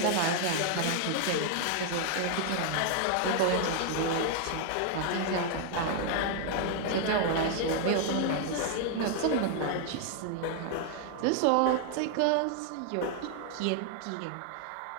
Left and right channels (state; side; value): different; both; correlation 0.00